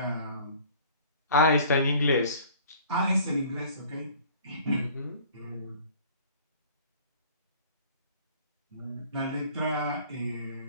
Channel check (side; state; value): both; inverted; correlation -0.50